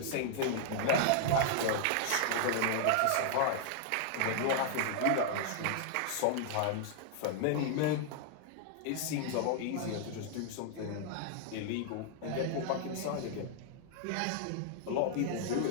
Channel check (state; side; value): different; both; correlation -0.01